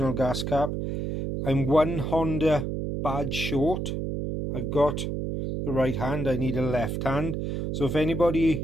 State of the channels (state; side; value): noise; right; hum, 2 dB below the sound